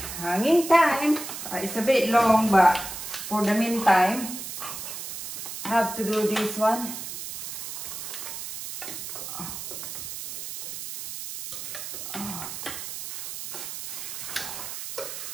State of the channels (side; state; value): right; noise; hiss, 8 dB below the sound